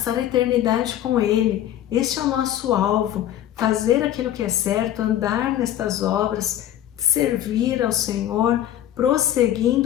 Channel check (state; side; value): quieter; right; 11.8 dB